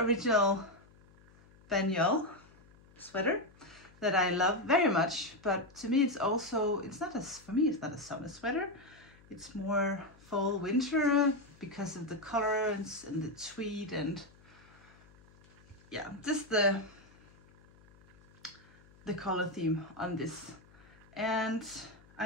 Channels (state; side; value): noise; left; hum, 26 dB below the sound